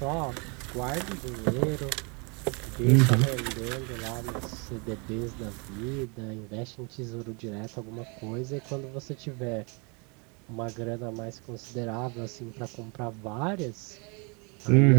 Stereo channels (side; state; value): left; quieter; 32.3 dB